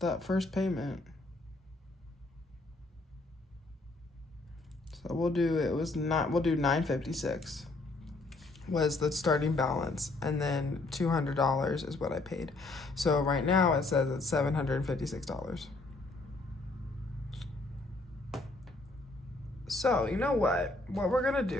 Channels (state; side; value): quieter; right; 3.1 dB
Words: first payment. So we'll do $956 was the starting balance, and then $200 is what I paid. So right now it says it's $756. So you know what we're gonna